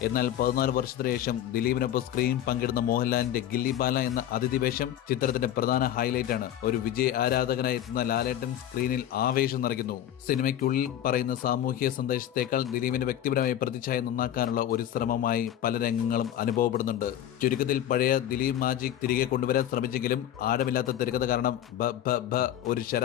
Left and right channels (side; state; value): right; quieter; 11.3 dB